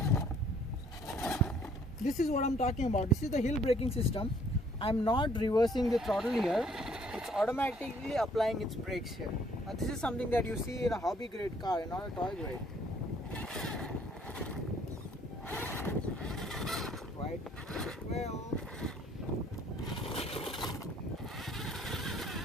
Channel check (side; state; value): both; normal; correlation 0.61